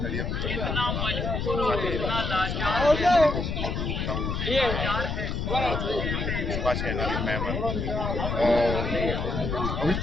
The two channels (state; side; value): noise; left; rumble, 2 dB below the sound